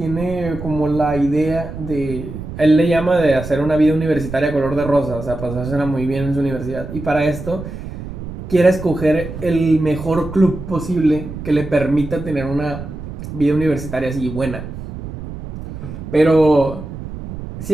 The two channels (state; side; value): noise; right; rumble, 10 dB below the sound